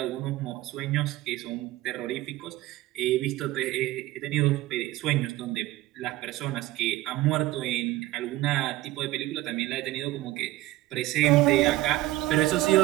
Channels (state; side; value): quieter; left; 16.9 dB